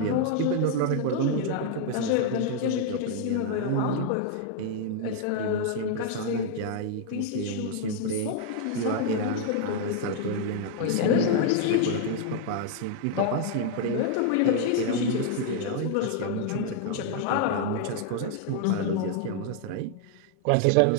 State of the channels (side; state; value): both; different; correlation 0.00